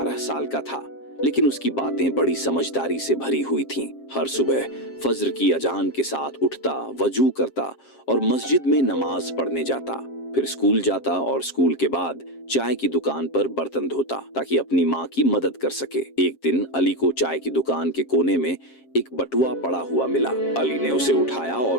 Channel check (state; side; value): late; right; 7.5 ms